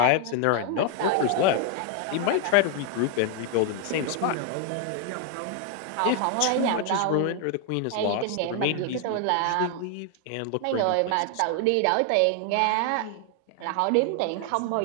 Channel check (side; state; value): both; different; correlation 0.00